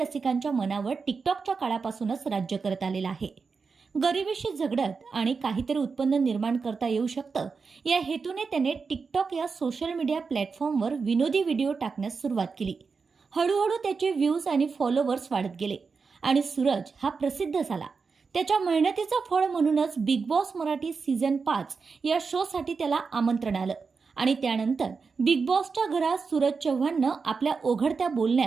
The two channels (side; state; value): left; quieter; 5.0 dB